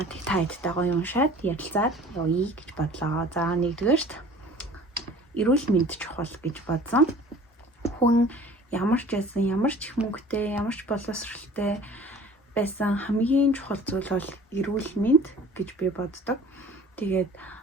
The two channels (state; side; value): normal; both; correlation 0.46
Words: Тэг та хэдтэй гоё уншаад ярилцаад явъя гэж бодлоо. За нэгдүгээрт эрүүл мэнд чухал гэж бодсон. Хүн ямар ч байсан, ямар ч их мөнгөтэй, ямар ч боловсралтай байсан хамгийн чухал зүйл бол эрүүл мэнд гэж би боддог. Тэгээд